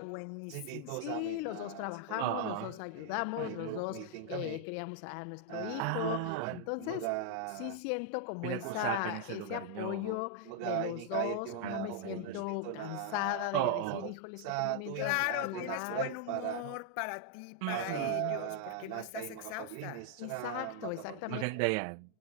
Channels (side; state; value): both; different; correlation 0.00